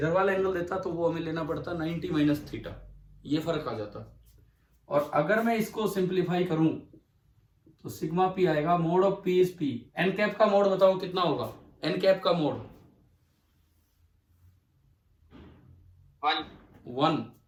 वाला एंगल देता तो वो हमें लेना पड़ता 90 माइनस थीटा, ये फर्क आ जाता। और अगर मैं इसको सिंप्लीफाई करूं तो सिग्मा पी आएगा, mod of p is p. N cap का मोड बताओ कितना होगा, एन कैप का मोड 1,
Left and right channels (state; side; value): identical; both; correlation 1.00